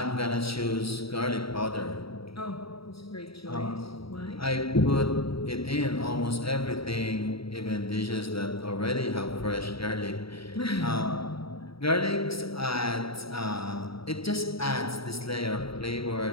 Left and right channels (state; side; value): late; right; 0.76 ms